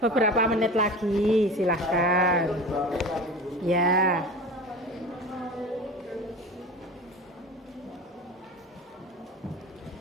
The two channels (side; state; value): both; normal; correlation 0.34